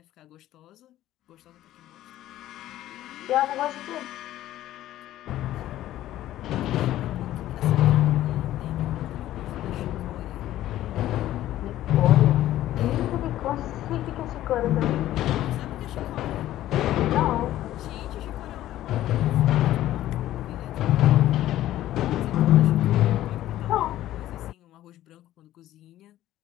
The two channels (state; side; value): quieter; right; 13.8 dB